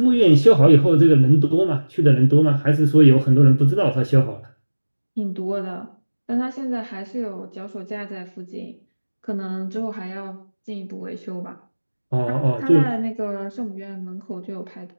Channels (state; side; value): inverted; both; correlation -1.00